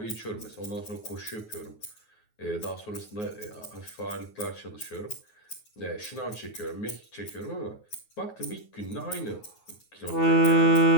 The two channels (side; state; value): right; late; 9.4 ms